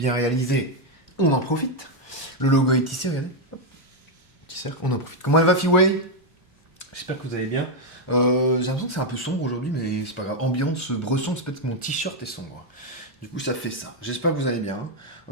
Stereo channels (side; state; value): both; normal; correlation 0.02